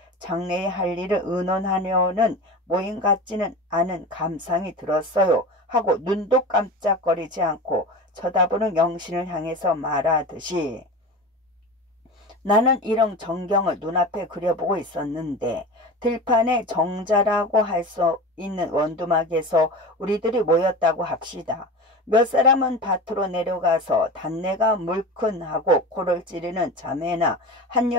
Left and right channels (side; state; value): both; normal; correlation 0.30